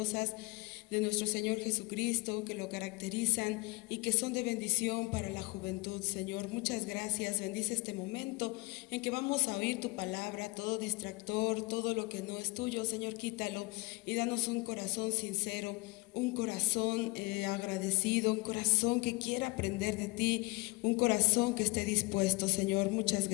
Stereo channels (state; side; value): quieter; right; 25.9 dB